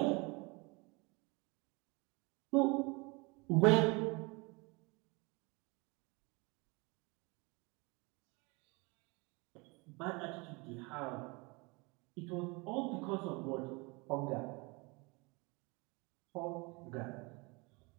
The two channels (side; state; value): left; quieter; 27.6 dB